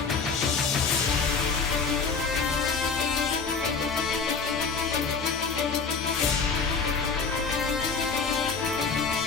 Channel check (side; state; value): right; quieter; 5.1 dB